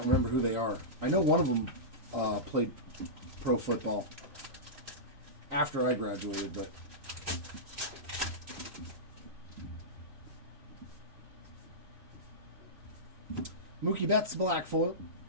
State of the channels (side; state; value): left; late; 3.0 ms